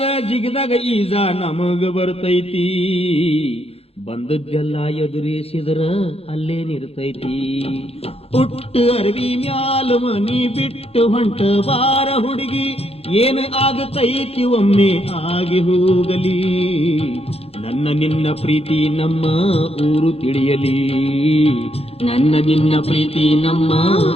ಜಿಗದಾಗ ಈಜ ನಮಗ ಬರ್ತೈತಿ, ಬಂದದ್ದೆಲ್ಲ ಎದುರಿಸಿದ್ರ ಅಲ್ಲೇ ನಿರ್ತೈತಿ. ಹುಟ್ಟು ಅರವಿ ಮ್ಯಾಲ ಮನಿ ಬಿಟ್ಟು ಹೊಂಟ ಬಾರ ಹುಡುಗಿ, ಏನು ಆಗತೈತಿ ಒಮ್ಮೆ ಆಗಿ ಹೋಗಲಿ. ನನ್ನ ನಿನ್ನ ಪ್ರೀತಿ ನಮ್ಮ ಊರು ತಿಳಿಯಲಿ, ನನ್ನ ನಿನ್ನ ಪ್ರೀತಿ ನಮ್ಮ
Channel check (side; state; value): right; late; 0.29 ms